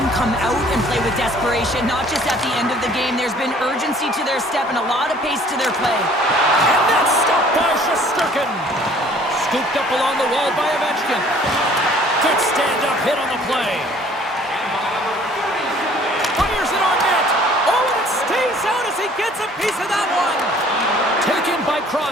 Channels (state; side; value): normal; both; correlation 0.55